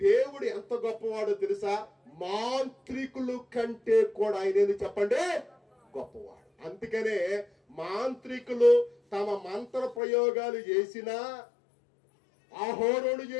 ఎంత గొప్పవాడో తెలుసా? మాంత్రికులు కంటే కూడా ఆయన చెప్పండి గొప్పవాడు. అందుకనే మాంత్రికులు తమ మంత్ర ప్రయోగాలు చేసినా, అహోరోను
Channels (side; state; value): right; drops out; at 10.0 s